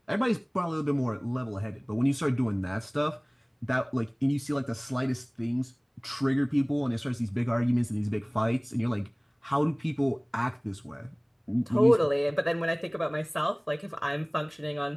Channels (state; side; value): identical; both; correlation 1.00